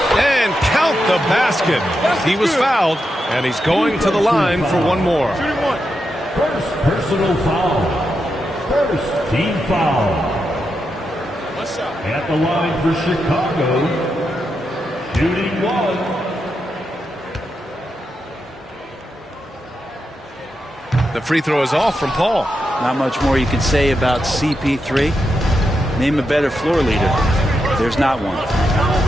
And count the basket. He was fouled. And he's going to the line for one more. First personal foul. First team foul. At the line for Chicago, shooting 1. The free throw is off from Paul. Not much more you can say about CP3. Name a better floor leader. There's not one.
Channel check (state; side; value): normal; both; correlation 0.86